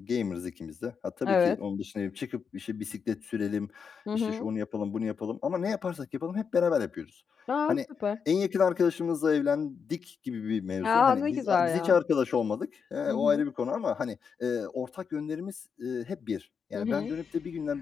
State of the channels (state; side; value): quieter; right; 6.3 dB